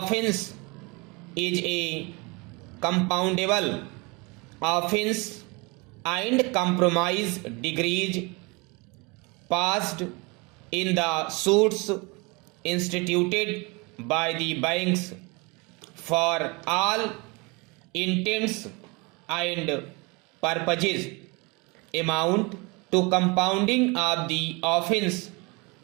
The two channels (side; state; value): left; quieter; 27.8 dB